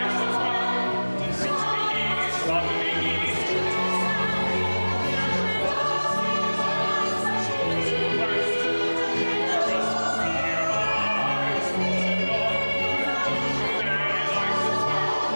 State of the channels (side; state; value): both; inverted; correlation -1.00